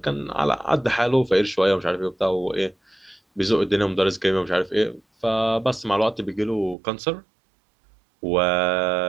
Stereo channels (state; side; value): drops out; left; at 6.8 s